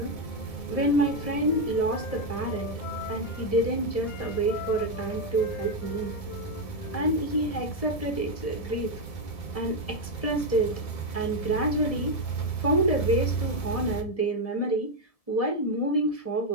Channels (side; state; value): right; late; 1.7 ms